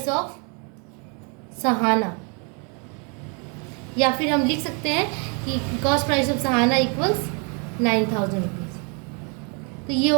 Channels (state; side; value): quieter; left; 35.6 dB